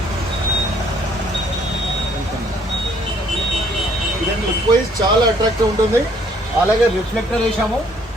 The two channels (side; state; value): both; normal; correlation 0.63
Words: ఇదండి లుక్ వైజ్ చాలా అట్రాక్టివ్ ఉంటుంది. అలాగే రిఫ్లెక్టర్ వేసాము.